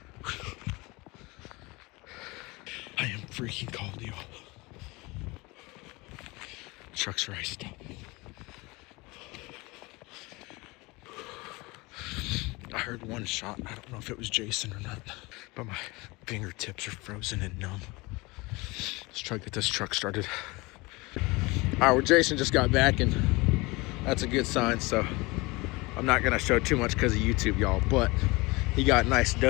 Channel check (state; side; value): quieter; right; 24.0 dB